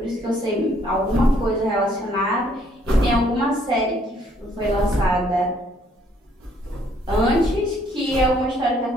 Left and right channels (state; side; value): normal; both; correlation 0.66